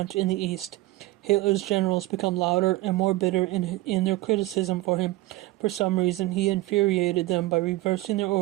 in the east. Hitler's generals became louder and more bitter in their criticism for him. For some reason, he infuriated them by reversing their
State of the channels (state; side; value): quieter; left; 18.0 dB